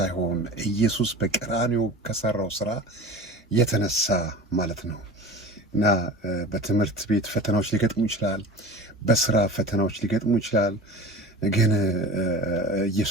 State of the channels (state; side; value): normal; both; correlation 0.36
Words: ኢየሱስ በቀራንዮ ከሰራው ስራ የተነሳ ማለት ነው። እና በትምህርት ቤት ፈተናዎች ሊገጥሙ ይችላል፣ በስራ ፈተናዎች ሊገጥሙ ይችላል። ግን